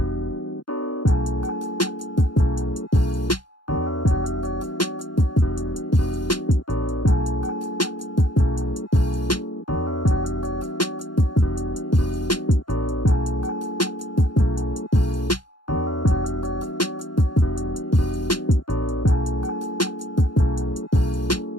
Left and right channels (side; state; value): right; late; 0.71 ms